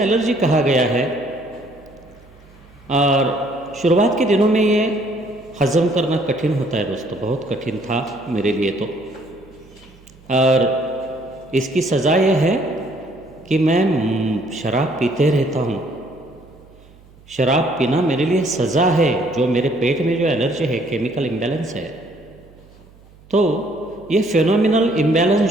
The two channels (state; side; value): noise; right; hum, 26 dB below the sound